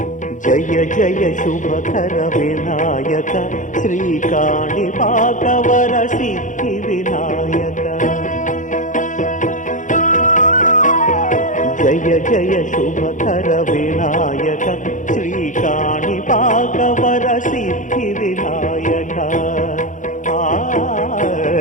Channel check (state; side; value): late; right; 0.37 ms